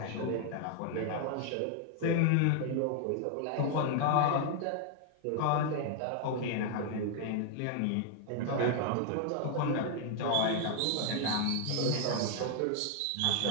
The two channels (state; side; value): different; both; correlation 0.00